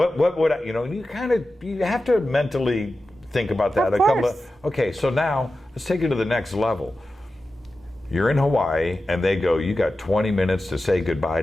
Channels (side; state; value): both; normal; correlation 0.93